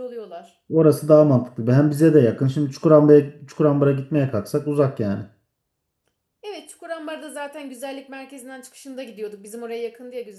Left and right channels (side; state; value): both; identical; correlation 1.00